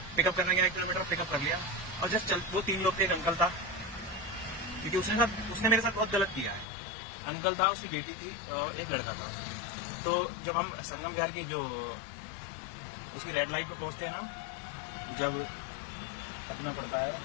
पिकअप करने गया, 1 किलोमीटर पिकअप कर लिया और जस्ट चल, वो 3 लोग थे। एक अंकल था, क्योंकि उसने मेरे साथ बहुत गलत किया है। अंकल था, उसकी बेटी थी और एक लड़का था। तो जब हम संगम बिहार की जो उसकी रेड लाइट पे पहुंचते हैं ना, जब अपना पड़ता है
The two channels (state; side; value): drops out; right; at 6.7 s